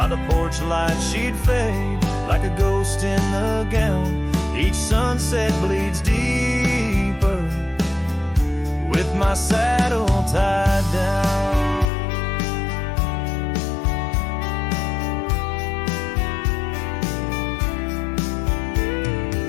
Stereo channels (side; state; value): right; drops out; at 11.9 s